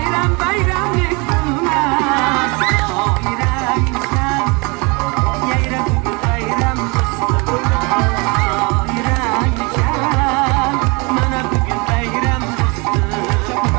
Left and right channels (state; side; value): quieter; left; 28.9 dB